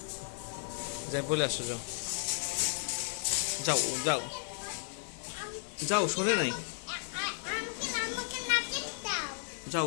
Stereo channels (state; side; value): silent; right; 55 dB below the other